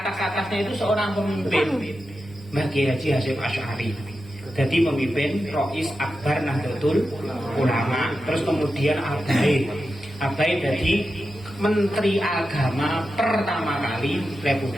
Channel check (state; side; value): normal; both; correlation 0.90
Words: itu seorang pemimpin. Mbah Kiai Haji Hasyim Asy'ari jadi pemimpin Rois Akbar Nahdlatul Ulama. Terus kemudian Abai jadi Menteri Agama pertama kali